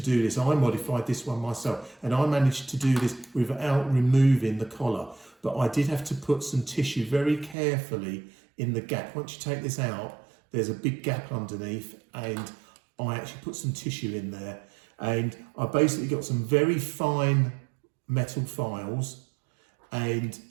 this. I modified this one myself, and I managed to do this without removing the collar. But I did have to put some tissue very carefully in the gap. Once you take this out, there's a big gap underneath, and I actually put some tissue in there. And I basically got some very fine metal files, and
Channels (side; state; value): left; drops out; at 7.6 s